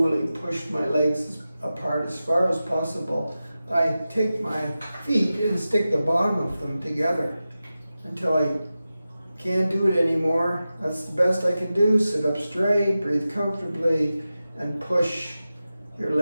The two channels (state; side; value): inverted; both; correlation -0.94